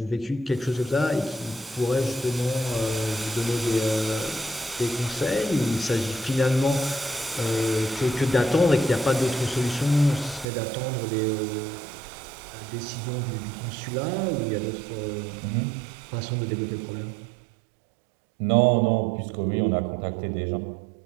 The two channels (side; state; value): left; drops out; at 10.5 s